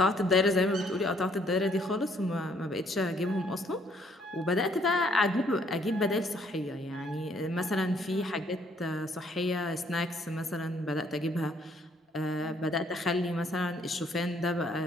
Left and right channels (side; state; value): both; normal; correlation 0.66